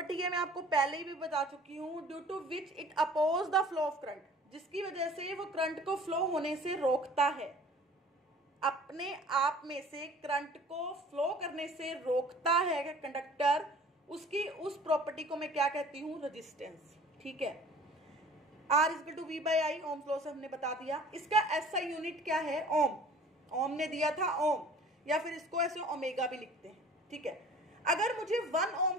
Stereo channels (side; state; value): both; normal; correlation 0.48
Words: है, मैं आपको पहले ही भी बता चुकी हूँ, due to which it oppose the flow of current, जिसकी वजह से वो करंट को फ्लो होने से रोकता है, अपने आप में से करंट को फ्लो करने से रोकता है कंडक्टर, उसकी उस प्रॉपर्टी को मैं क्या कहती हूँ, रेजिस्टेंस। ठीक है, R equal to V by I, Ohm law से हमने बता दिया। इसका ऐसा यूनिट क्या है, ओम, ओम ने दिया था ओम, या फिर इसको ऐसे ओमेगा भी लिखते हैं। ठीक है, अगर मुझे 1 ओम